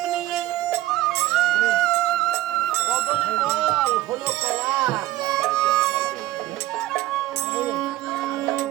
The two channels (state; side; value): quieter; left; 15.7 dB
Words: নিয়ে কদলী ফল হলো কলা